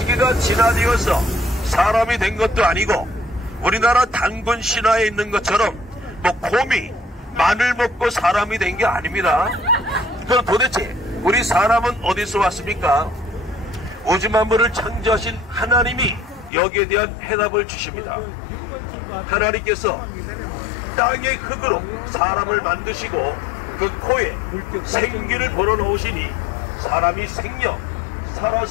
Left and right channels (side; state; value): right; drops out; at 16.5 s